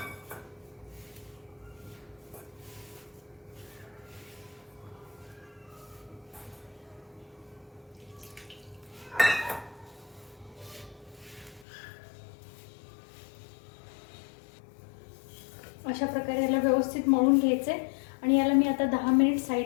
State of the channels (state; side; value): drops out; right; at 11.7 s